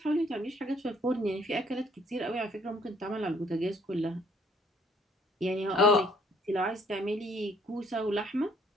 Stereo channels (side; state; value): both; normal; correlation 0.63